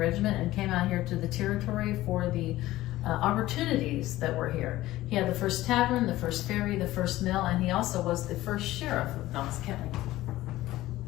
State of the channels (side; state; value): right; quieter; 16.3 dB